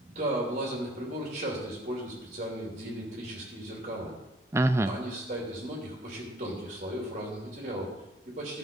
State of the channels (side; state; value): both; normal; correlation 0.59